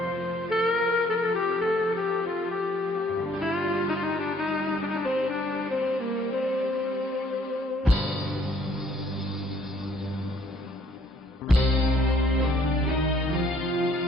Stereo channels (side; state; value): both; normal; correlation 0.62